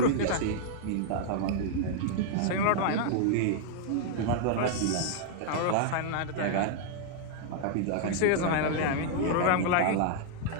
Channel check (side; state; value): both; different; correlation -0.01